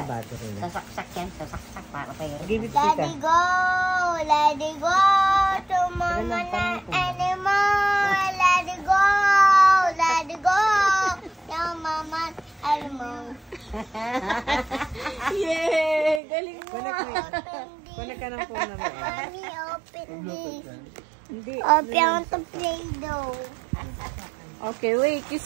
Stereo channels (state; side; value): drops out; left; at 16.2 s